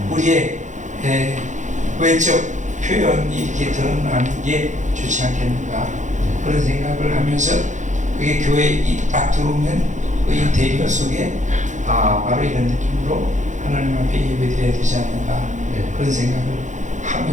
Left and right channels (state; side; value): late; left; 0.35 ms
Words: 우리의 외적 표현이 이렇게 드러나는 게 좋지 않겠는가 그런 생각을 하면서 그게 교회에 딱 들어오면 그 인테리어 속에 바로 이런 느낌으로 하나님 앞에 예배드려야 되지 않는가 그런 생각을